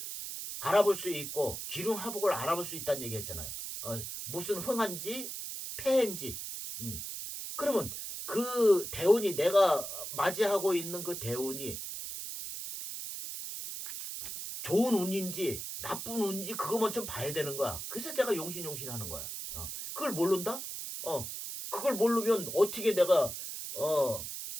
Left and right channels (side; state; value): right; noise; hiss, 7 dB below the sound